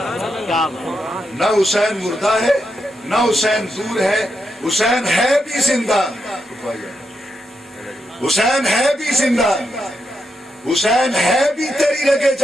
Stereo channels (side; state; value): both; normal; correlation 0.84